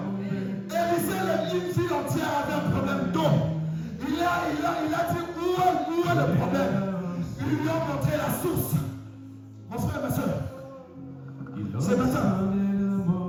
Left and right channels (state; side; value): identical; both; correlation 1.00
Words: Élisée, une ville entière avait un problème d'eau. Il a dit où est le problème. Il lui a montré la source. Mon frère, ma soeur, ce matin,